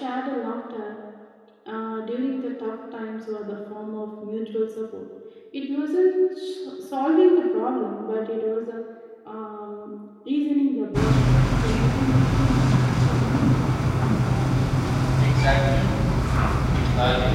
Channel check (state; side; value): identical; both; correlation 1.00